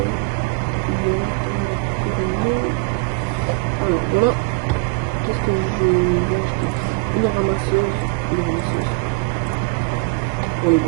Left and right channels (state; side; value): quieter; left; 27.9 dB